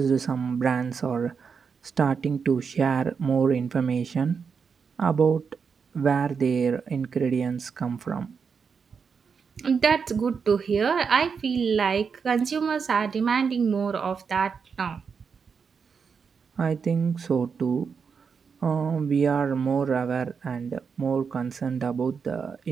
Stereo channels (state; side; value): quieter; left; 5.9 dB